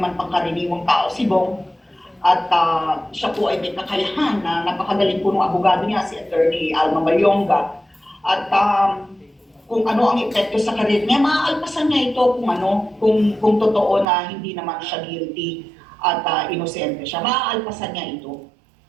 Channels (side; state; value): left; drops out; at 14.1 s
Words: pangkaraniwang tao si Bong. At siya po ay may kakayahan na napakagaling po ng abogado niya, si Attorney Alma Mayonga. At kung ano ang epekto sa karir niya, maaalpasan niya ito kung totoo na hindi naman siya guilty at inosente siya. Maaalpasan niya ito.